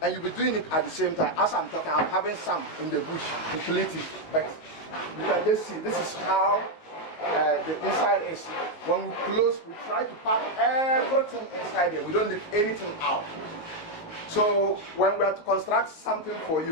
and you'll be doing it at the same time. As I'm talking, I'm having some in the bush, completely. But you can just see, this is how the inside is. When we close, we try to pack everything inside here. We don't leave anything out. So when we are to construct something for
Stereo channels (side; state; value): right; late; 19 ms